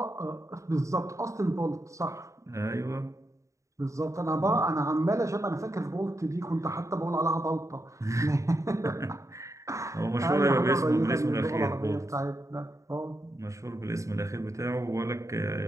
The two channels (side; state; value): left; late; 0.15 ms